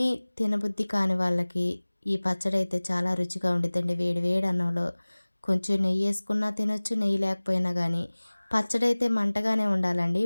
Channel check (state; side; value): inverted; both; correlation -1.00